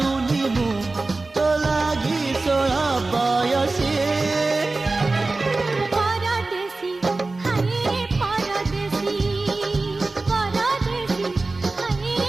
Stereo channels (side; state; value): left; quieter; 3.4 dB